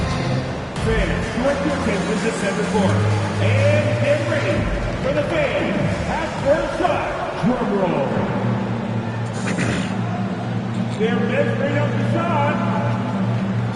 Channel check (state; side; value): identical; both; correlation 1.00